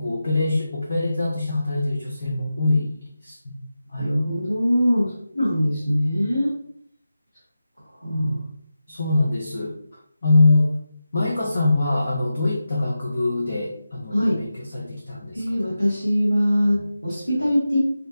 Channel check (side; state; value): both; inverted; correlation -0.91